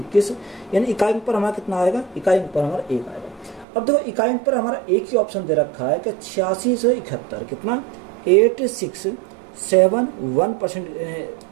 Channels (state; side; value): drops out; left; at 3.7 s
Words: यानी इकाई अंक पर हमारा कितना आएगा, इकाई अंक पर हमारा 1 आएगा। अब देखो इकाई अंक पर हमारा एक ही ऑप्शन दे रखा है कि 86 से 71, कितना 8671%,